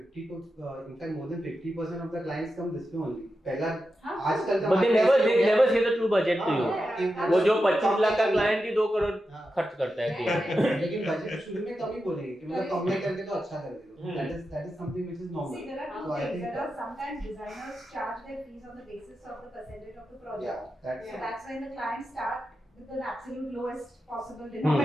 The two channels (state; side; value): normal; both; correlation 0.89